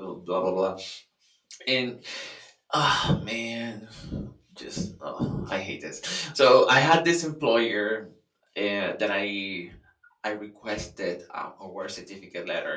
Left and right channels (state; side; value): identical; both; correlation 1.00